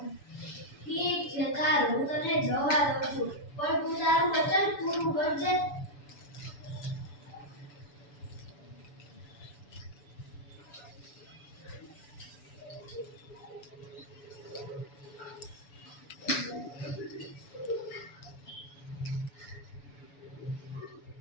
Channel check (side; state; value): right; late; 7.0 ms